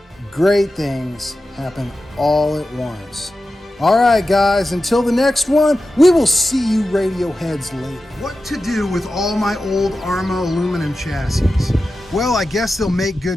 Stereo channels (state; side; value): normal; both; correlation 0.93